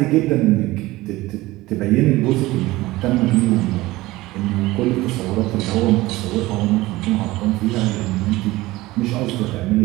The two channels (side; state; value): left; quieter; 18.8 dB